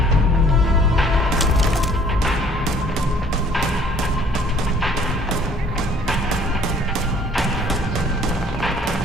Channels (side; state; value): both; normal; correlation 0.56